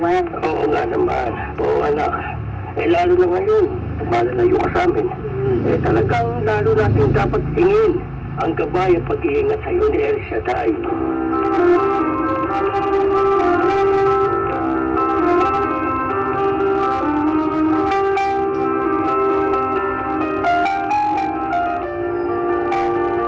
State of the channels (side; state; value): both; identical; correlation 1.00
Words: Oo nga naman. Oo, anak. Lalo na ngayon, malalayo ka sa amin. Talagang lalo natin dapat tingin ang gabay at pag-iingat sa'yo ni El Shaddai.